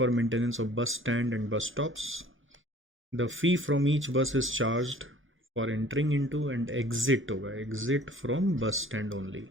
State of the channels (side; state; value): both; normal; correlation 0.51